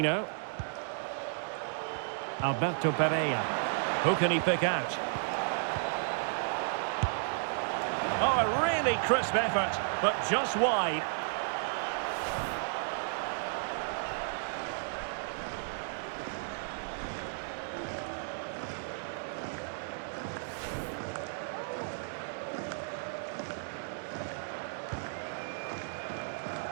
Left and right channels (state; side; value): silent; left; digital silence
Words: Alberto Pereira. Who can he pick out? Oh, a really crisp effort, but just wide.